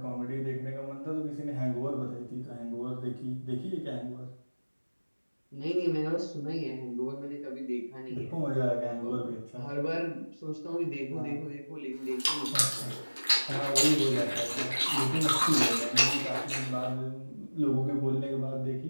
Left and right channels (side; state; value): both; inverted; correlation -1.00